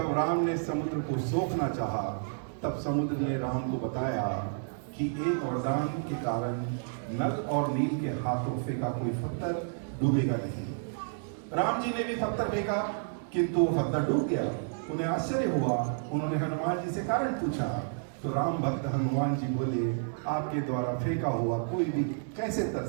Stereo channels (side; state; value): left; silent; digital silence